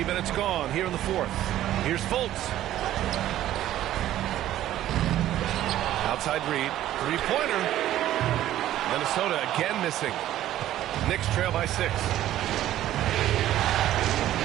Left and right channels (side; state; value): left; quieter; 13.1 dB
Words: minutes gone here in the fourth. Here's Fultz. Outside Reed. Three-pointer. Minnesota again missing. Knicks trail by 6.